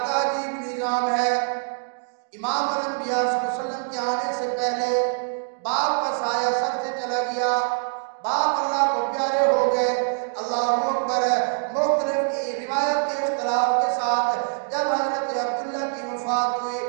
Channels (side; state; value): left; silent; digital silence